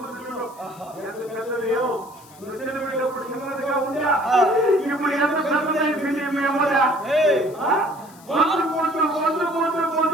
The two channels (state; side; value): noise; left; hiss, 24 dB below the sound